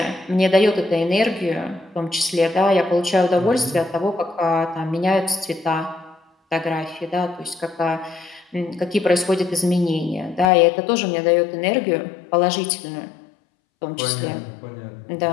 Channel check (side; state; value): right; drops out; at 10.5 s